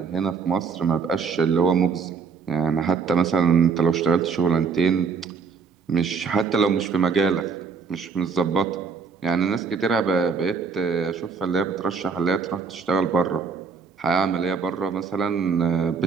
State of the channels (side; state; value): left; quieter; 5.3 dB